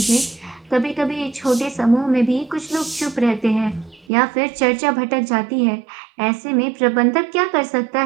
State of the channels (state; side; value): drops out; left; at 4.0 s